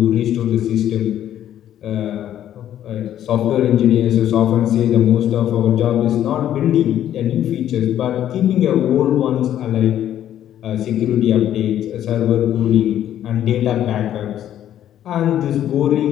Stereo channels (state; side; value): quieter; right; 11.2 dB